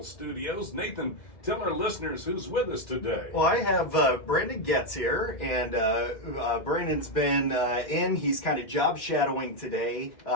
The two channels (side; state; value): right; late; 2.1 ms